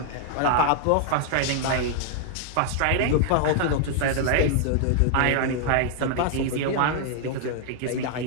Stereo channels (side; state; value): both; different; correlation 0.00